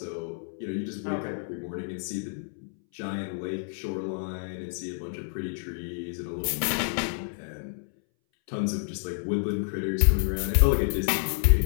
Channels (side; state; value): right; silent; 59 dB below the other